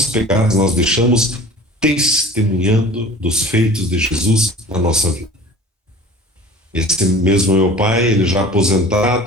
pegadas nós deixamos testemunhando dos feitos de Jesus na nossa vida. Esse mesmo meu pai, ele já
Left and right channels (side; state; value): both; normal; correlation 0.43